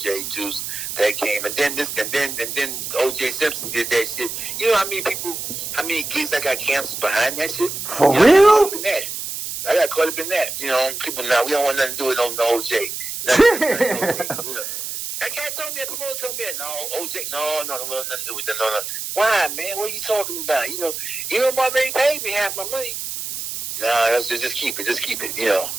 Juice, that came, and then OJ Simpson did that shit. How many kids that got canceled behind that shit? For real? I got caught up in that. People now, we don't want nothing to do with no OJ. That cat told me, that promoter told me, no, OJ, no, nothing to do with that. No. Why, man? What are you talking about? Mom already paid me half my money. No, just keep it,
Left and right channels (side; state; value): right; noise; hiss, 6 dB below the sound